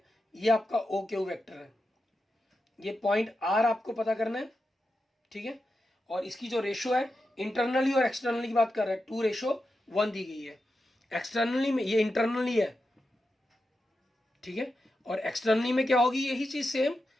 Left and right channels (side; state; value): both; normal; correlation 0.89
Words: ये आपका OQ वेक्टर है। ये पॉइंट r आपको पता करना है, ठीक है। और इसकी जो रेशो है, इंटरनली और एक्सटर्नली की बात कर रहे हैं, 2:1 दी गई है। एक्सटर्नली में ये इंटरनली है, ठीक है, और एक्सटर्नली में क्या होगी, यही चीज सेम